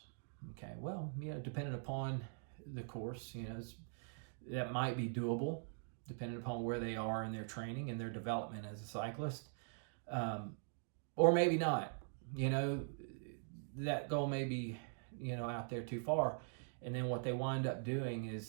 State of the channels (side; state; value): left; silent; digital silence